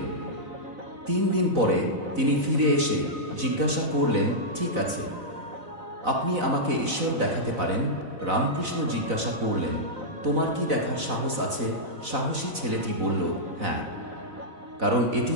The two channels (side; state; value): left; late; 4.0 ms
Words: 3 দিন পরে তিনি ফিরে এসে জিজ্ঞাসা করলেন, ঠিক আছে, আপনি আমাকে ঈশ্বর দেখাতে পারেন? রামকৃষ্ণ জিজ্ঞাসা করলেন, তোমার কি দেখার সাহস আছে? সাহসী ছেলেটি বলল, হ্যাঁ, কারণ এটি